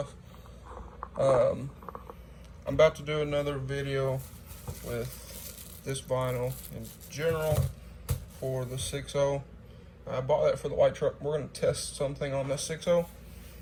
I'm about to do another video with this vinyl in general for the 6.0. I bought that for the white truck. We're going to test something on this 6.0.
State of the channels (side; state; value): both; identical; correlation 1.00